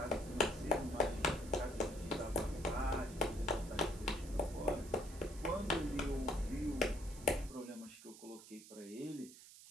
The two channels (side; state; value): right; noise; hiss, 17 dB below the sound